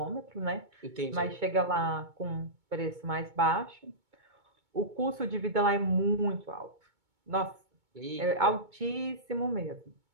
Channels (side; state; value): left; late; 2.2 ms